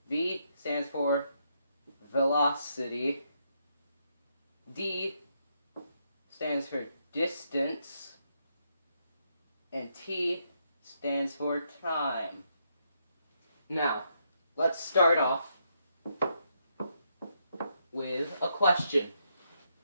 V stands for velocity. D stands for distance. And T stands for time. Now, let's start off with a question.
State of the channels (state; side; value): inverted; both; correlation -0.77